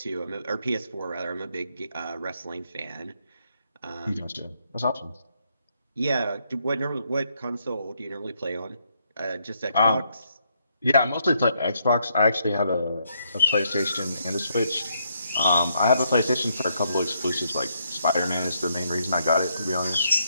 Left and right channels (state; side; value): inverted; both; correlation -0.75